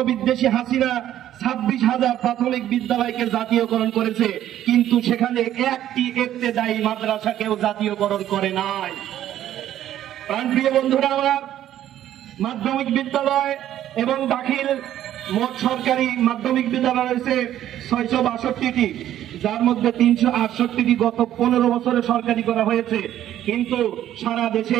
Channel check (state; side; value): quieter; left; 12.0 dB